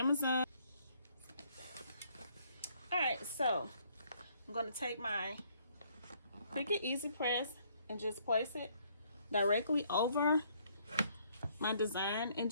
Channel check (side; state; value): both; inverted; correlation -0.66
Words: All right, so I'm going to take my Cricut Easy Press and just place it directly over my design and